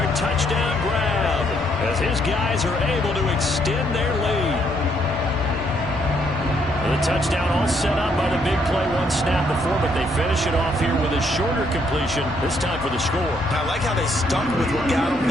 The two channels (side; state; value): both; normal; correlation 0.71